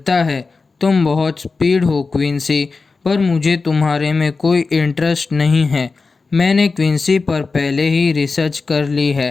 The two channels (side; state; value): right; quieter; 4.2 dB